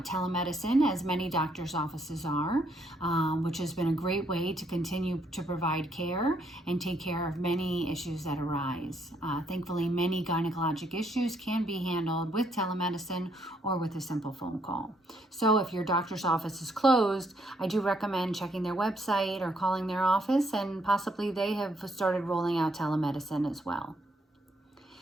telemedicine, as many doctors' offices are, which has been a great way to continue to provide care and take care of many issues that arise. Thankfully, many gynecologic issues can be handled with telemedicine or with a simple phone call. So if your doctor's office is closed, I do recommend checking their website or calling their office, and possibly they have started rolling out telemedicine as well.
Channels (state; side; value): normal; both; correlation 0.72